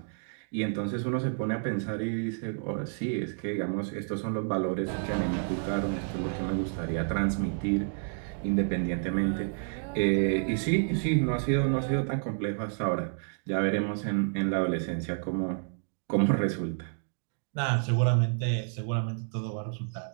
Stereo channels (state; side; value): silent; left; digital silence